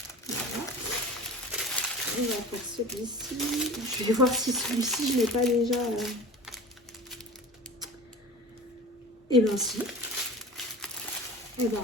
Voilà. On va faire celui-ci. Je vais voir si celui-ci je l'ai pas déjà. Et ben si. Et ben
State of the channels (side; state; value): both; normal; correlation 0.37